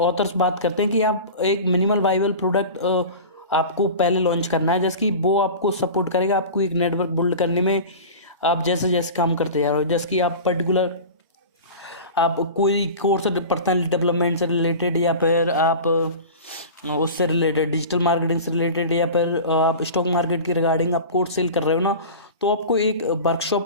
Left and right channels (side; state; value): both; inverted; correlation -0.33